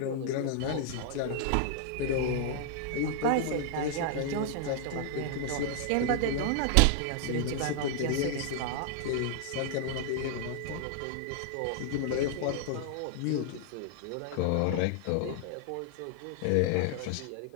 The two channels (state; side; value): different; both; correlation -0.01